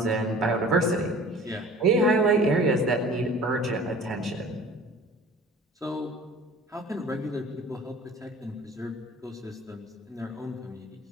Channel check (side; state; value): both; normal; correlation 0.45